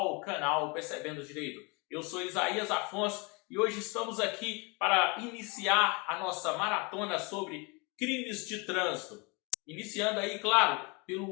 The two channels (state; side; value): quieter; right; 29.7 dB